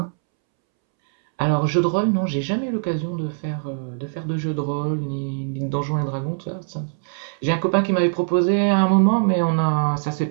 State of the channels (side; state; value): left; silent; 64 dB below the other